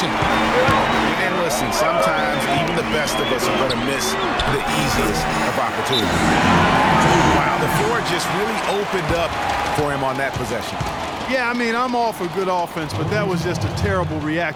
And listen, sometimes even the best of us are going to miss the easiest of opportunities. Wow, the floor just really opened up for him on that possession. Yeah, I mean, I'm all for good offense, but that was just a terrible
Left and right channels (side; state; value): both; identical; correlation 1.00